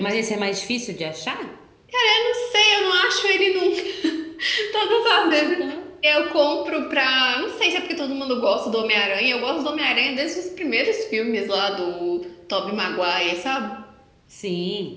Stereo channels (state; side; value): identical; both; correlation 1.00